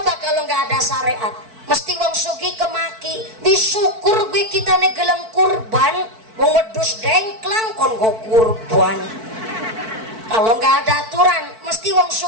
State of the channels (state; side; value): late; left; 4.5 ms